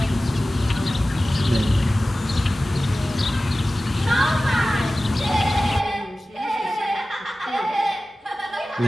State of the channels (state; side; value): normal; both; correlation 0.96